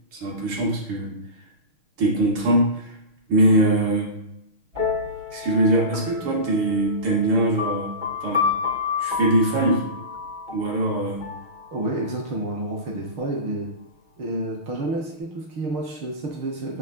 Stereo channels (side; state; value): left; late; 6.5 ms